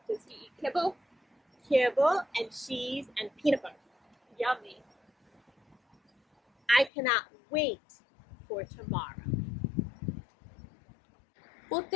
Does he eat kibble? Kibble and cheese and peanut butter. Yummy. I cannot wait for tomorrow. Well,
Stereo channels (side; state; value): right; drops out; at 6.9 s